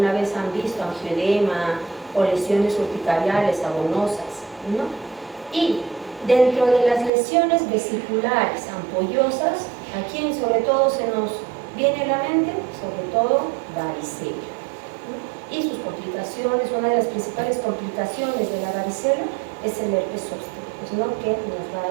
vez han visto angioedema o lesiones urticariales abonosas, ¿no? Y Dentro de las lesiones vesiculares ampollosas, ¿a quién sobre todo se nos viene a la mente? Sobre todo varicela. Y sus complicaciones, una de las principales complicaciones de la varicela es el herpes zóster, pues, ¿no? Que nos va a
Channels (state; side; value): drops out; left; at 7.1 s